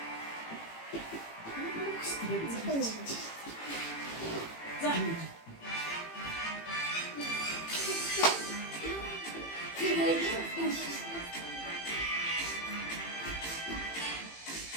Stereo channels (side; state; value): right; late; 18 ms